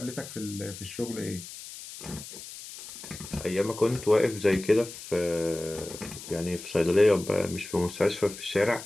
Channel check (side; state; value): left; noise; hiss, 13 dB below the sound